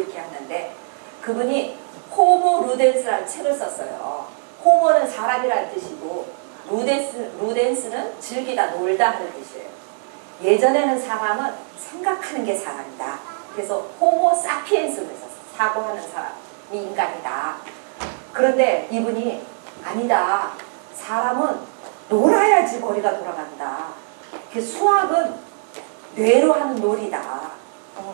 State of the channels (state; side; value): silent; left; 64 dB below the other